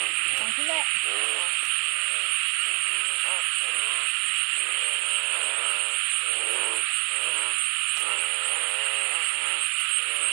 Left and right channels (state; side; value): quieter; left; 33.3 dB